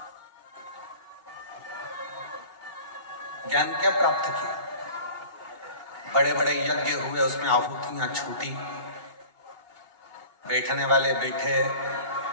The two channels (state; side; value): late; left; 2.7 ms